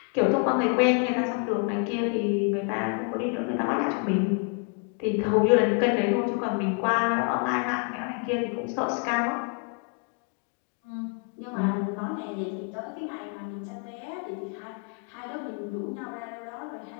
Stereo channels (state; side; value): quieter; right; 38.9 dB